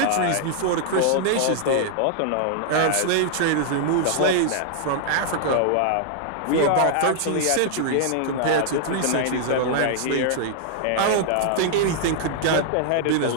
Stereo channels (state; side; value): different; both; correlation 0.00